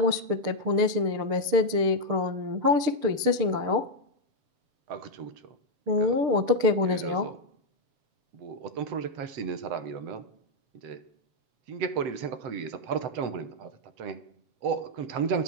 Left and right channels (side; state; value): left; late; 6.8 ms